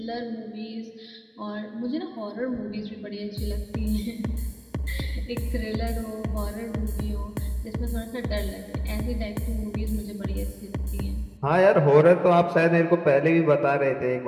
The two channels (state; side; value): identical; both; correlation 1.00